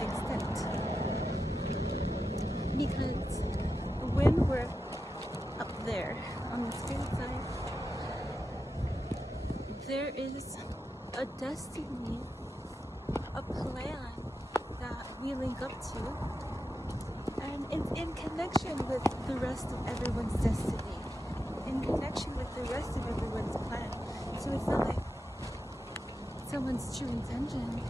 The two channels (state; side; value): normal; both; correlation 0.89